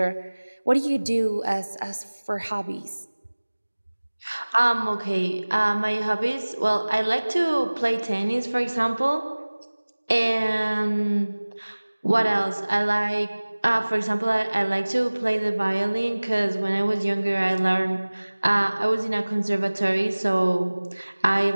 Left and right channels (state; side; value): inverted; both; correlation -1.00